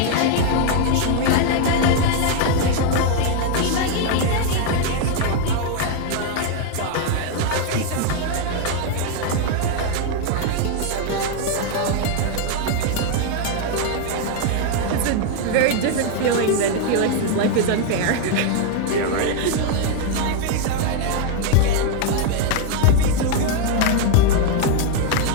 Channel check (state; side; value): different; both; correlation 0.00